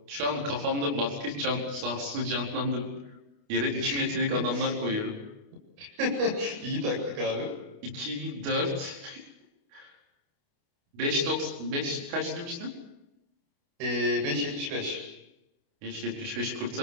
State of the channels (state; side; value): late; left; 28 ms